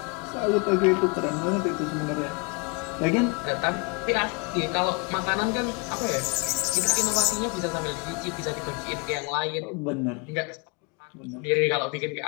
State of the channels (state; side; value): quieter; right; 31.6 dB